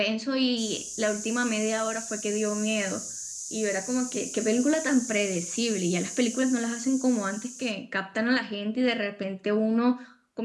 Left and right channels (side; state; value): both; identical; correlation 1.00